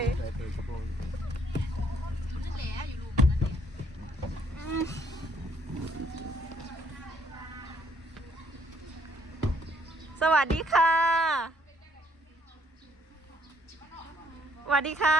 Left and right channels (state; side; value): normal; both; correlation 0.67